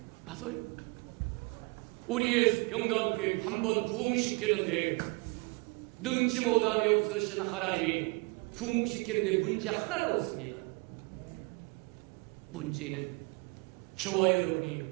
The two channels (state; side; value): quieter; left; 28.9 dB